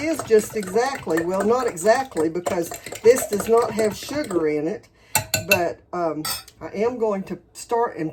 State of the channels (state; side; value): identical; both; correlation 1.00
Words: just exactly, well, not exactly, because this does not have sugar in it. But I am going to start and